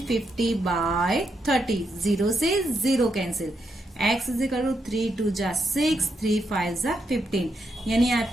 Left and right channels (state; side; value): normal; both; correlation 0.81